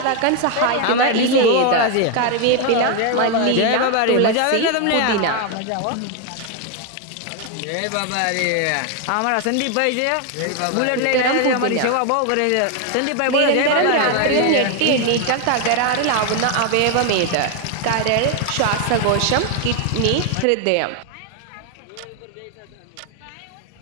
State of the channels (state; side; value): different; both; correlation 0.01